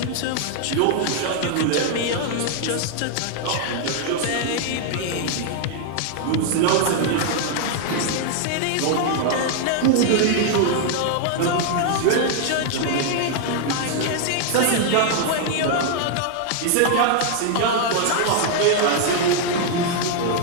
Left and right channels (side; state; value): both; different; correlation 0.00